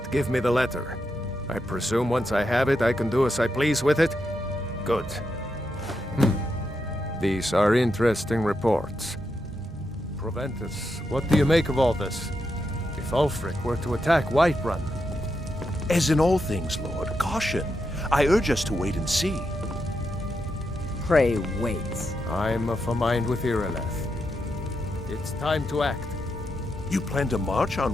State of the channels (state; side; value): normal; both; correlation 0.84